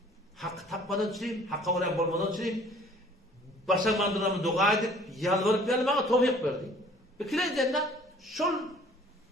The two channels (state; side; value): normal; both; correlation 0.54